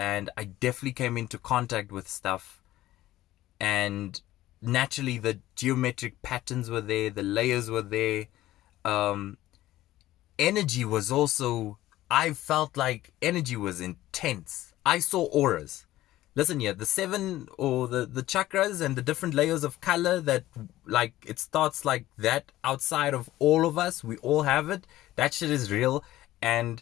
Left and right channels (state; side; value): quieter; right; 15.4 dB